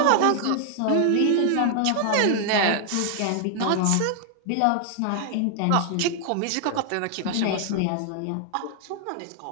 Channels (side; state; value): both; different; correlation 0.00